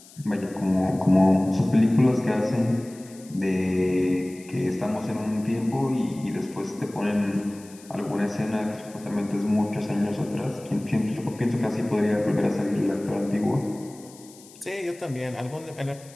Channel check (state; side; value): noise; left; hiss, 22 dB below the sound